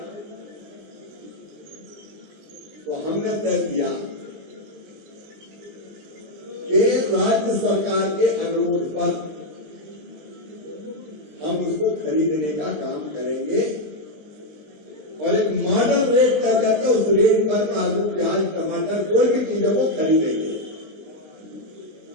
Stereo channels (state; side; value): late; left; 20 ms